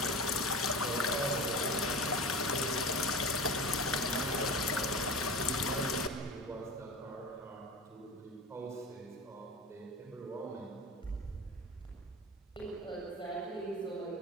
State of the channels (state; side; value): normal; both; correlation 0.30